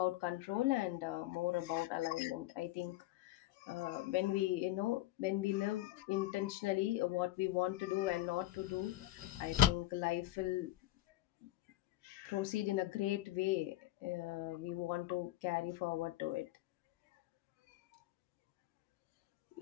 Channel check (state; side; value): quieter; right; 15.9 dB